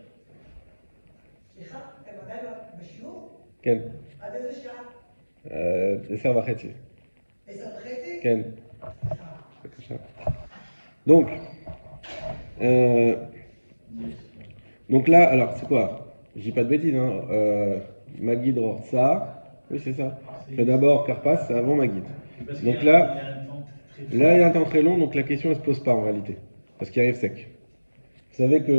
Ken. Tesser וחצי. Ken. בבקשה. Donc, donc là, alors c'est quoi? Je dis pas de bêtises, hein. Ma guide ça. Oui, c'est ça. Je fais d'abord Carpas, c'est avant ma guide. Donc là, il y a un temps très long, donc la question ne se pose pas en réalité. Parce qu'il arrive sec. Vous savez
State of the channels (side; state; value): both; inverted; correlation -1.00